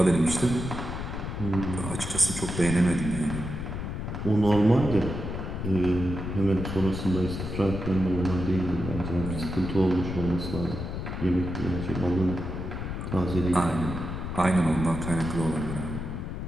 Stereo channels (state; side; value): noise; left; rumble, 5 dB below the sound